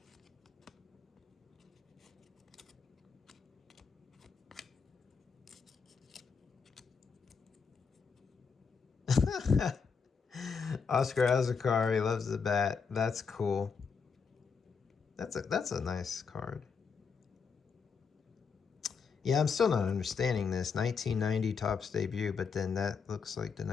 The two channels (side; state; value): right; quieter; 5.6 dB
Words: Oscar has a car. He loves the bat. That's cool. That's a nice card. Yeah, I'm still not understanding this. 1990 Topps debut, but then that looks like the